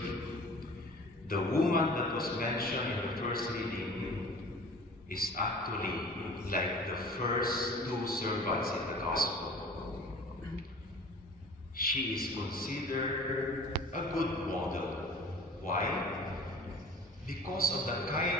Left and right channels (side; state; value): both; normal; correlation 0.44